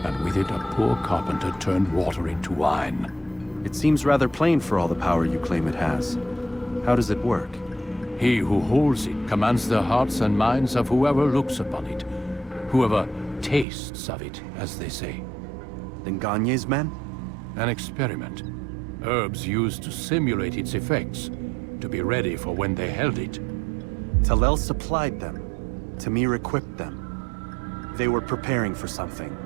and with it a poor carpenter turned water into wine. It seems rather plain for all the power you claim it has. How does it work? He who holds it commands the hearts and minds of whoever looks upon it, whoever tastes of it, as they say. Then Gagne's men? An experiment. Herbs used to simulate its effects, to be ready for when they held it. Talel supplied them. Tamir equipped them. They were preparing for something.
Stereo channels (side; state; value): left; drops out; at 13.7 s